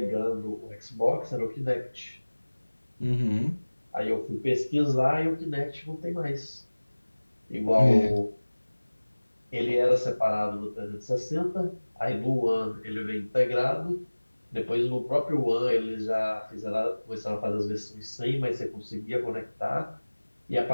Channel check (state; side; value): inverted; both; correlation -1.00